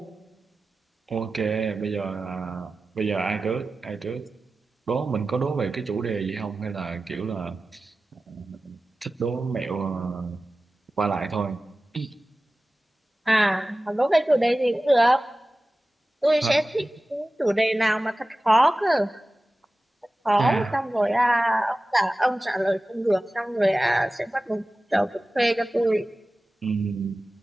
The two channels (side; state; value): both; normal; correlation 0.96